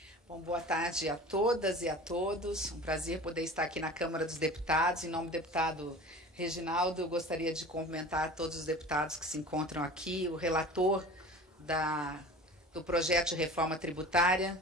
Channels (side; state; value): both; normal; correlation 0.39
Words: Bom, boa tarde a todas e a todos. Um prazer poder estar aqui na Câmara dos Deputados. Em nome do deputado Reginaldo, eu gostaria de cumprimentar todos os deputados que se encontram aqui, o relator do projeto de reforma tributária.